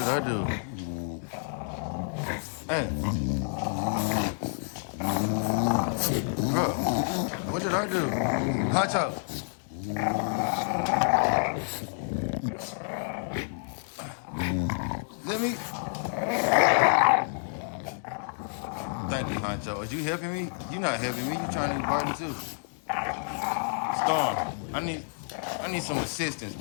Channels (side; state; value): right; silent; 59 dB below the other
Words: I do? Hey, bro, what did I do? Honcho. Let me. Thank you, Honcho. Are you helping me? You not helping me. You trying to be burden too. Storm, I need some assistance,